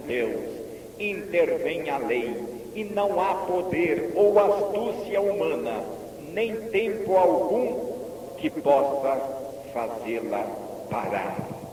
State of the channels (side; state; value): both; identical; correlation 1.00